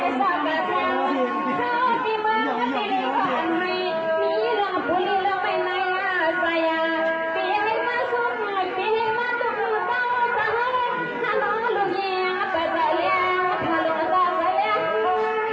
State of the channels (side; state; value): both; identical; correlation 1.00